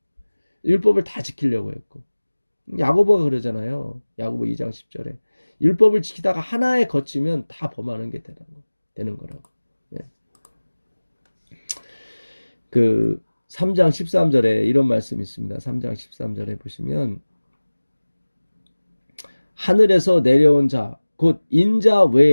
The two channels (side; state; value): both; inverted; correlation -1.00